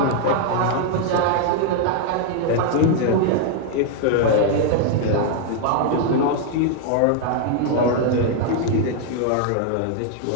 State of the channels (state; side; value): different; both; correlation 0.00